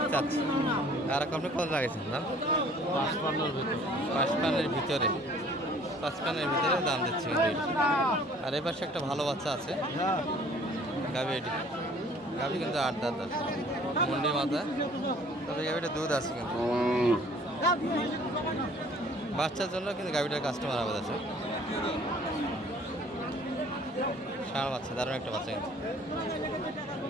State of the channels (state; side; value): normal; both; correlation 0.54